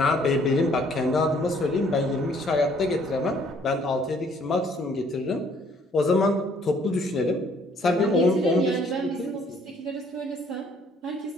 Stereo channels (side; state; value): both; normal; correlation 0.62